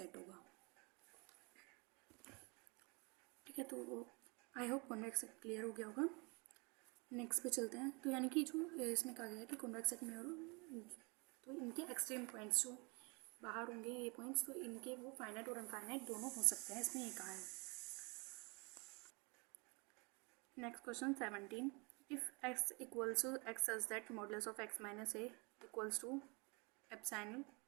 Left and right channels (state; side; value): quieter; left; 30.3 dB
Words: होगा। ठीक है, तो I hope convex set clear हो गया होगा। नेक्स्ट पे चलते हैं। तो यानी कि जो इसमें कहा गया है कि कॉन्वेक्स सेट में और तो इनके एक्सट्रीम पॉइंट्स जो बाहर होंगे ये पॉइंट्स, तो इनके वो फाइनाइट और अनफाइनाइट दोनों हो सकते हैं, इसमें ये कहा है। Next question 17, if x equals to x such that modulus of x minus a equals to epsilon,